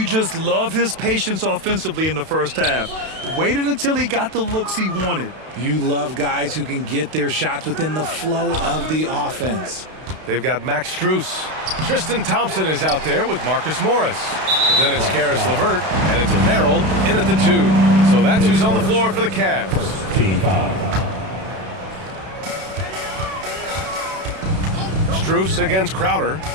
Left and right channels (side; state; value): left; late; 32 ms